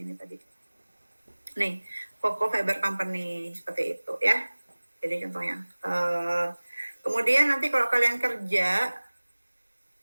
ini tadi. Nih, Coco Fiber Company seperti itu ya. Jadi contohnya. Kemudian nanti kalau kalian kerja,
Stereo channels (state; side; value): inverted; both; correlation -1.00